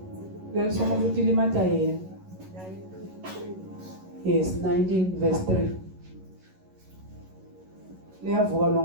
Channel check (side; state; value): left; late; 11 ms